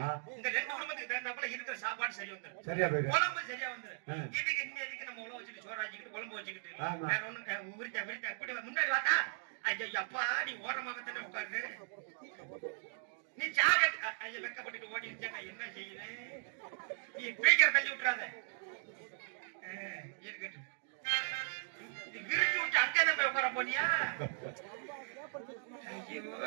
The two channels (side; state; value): left; silent; digital silence